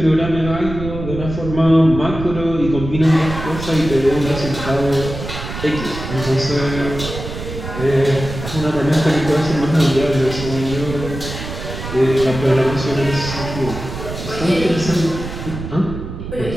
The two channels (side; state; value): right; noise; rumble, 8 dB below the sound